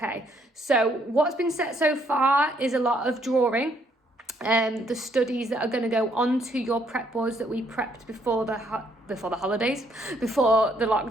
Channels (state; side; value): normal; both; correlation 0.69